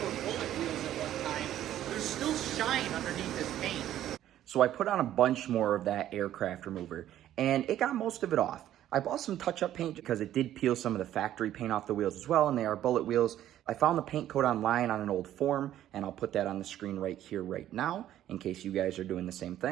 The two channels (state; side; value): quieter; left; 12.2 dB